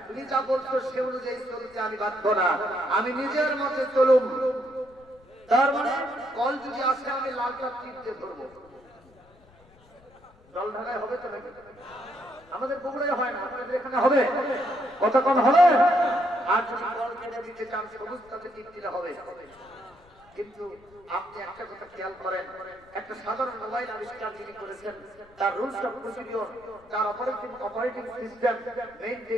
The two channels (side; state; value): left; noise; rumble, 28 dB below the sound